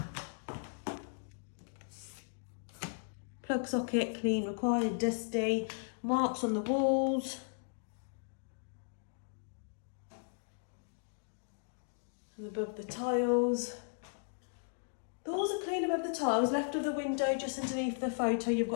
Plug socket, clean required, dusty. Marks on the walls. And above the tiles. The walls are clean above the tiles. Left of the window, just underneath the photo, you've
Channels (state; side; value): silent; right; digital silence